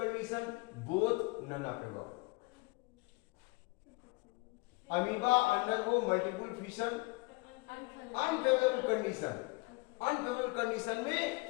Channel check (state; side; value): quieter; right; 25.4 dB